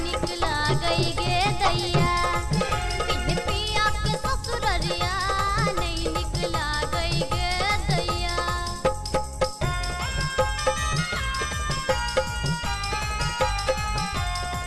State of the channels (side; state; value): both; identical; correlation 1.00